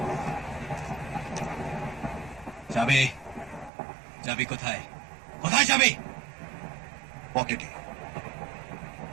চাবি চাবি কোথায়? কোথায় চাবি? পকেটে,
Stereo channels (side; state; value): left; drops out; at 3.7 s